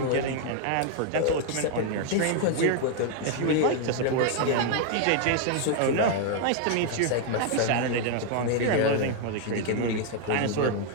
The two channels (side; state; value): both; different; correlation 0.00